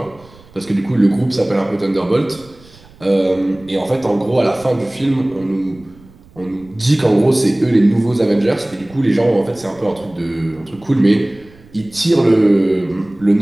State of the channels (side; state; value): right; noise; rumble, 25 dB below the sound